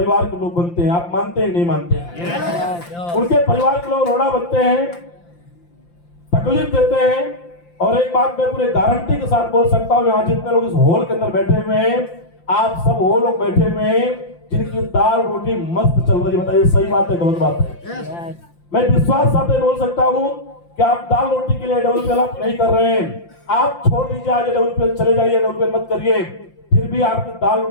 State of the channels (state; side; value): late; right; 5.8 ms